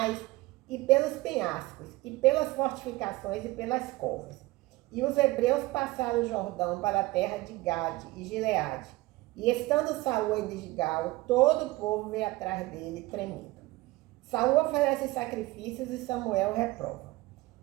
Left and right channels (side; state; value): left; quieter; 20.1 dB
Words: e pelos penhascos, e pelas fortificações e pelas covas. E os hebreus passaram o Jordão para a terra de Gade e Gileade. E estando Saul em Gilgal, todo o povo veio atrás dele, tremendo. Saul oferece sacrifícios e Samuel reprova.